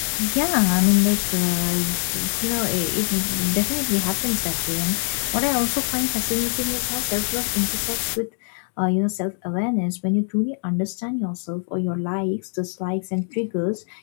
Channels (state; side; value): silent; right; digital silence